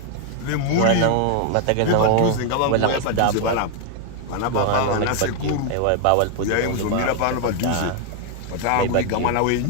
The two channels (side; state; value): both; different; correlation 0.00